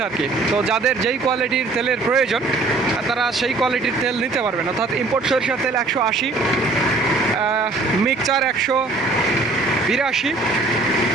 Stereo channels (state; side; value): quieter; left; 3.5 dB